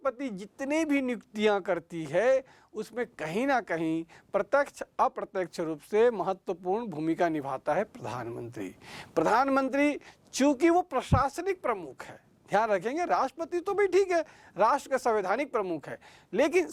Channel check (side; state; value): both; identical; correlation 1.00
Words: जितने भी नियुक्तियां करती है उसमें कहीं ना कहीं प्रत्यक्ष अप्रत्यक्ष रूप से महत्वपूर्ण भूमिका निभाता है प्रधानमंत्री। चूंकि वो प्रशासनिक प्रमुख है, ध्यान रखेंगे, राष्ट्रपति तो भी ठीक है, राष्ट्र का संवैधानिक प्रमुख है, लेकिन